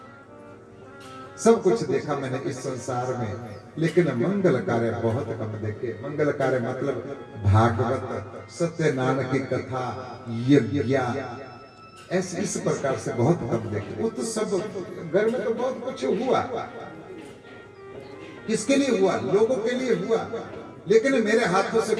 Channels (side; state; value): both; identical; correlation 1.00